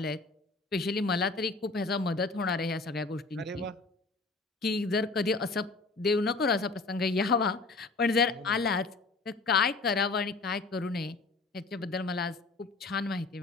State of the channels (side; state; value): right; quieter; 3.8 dB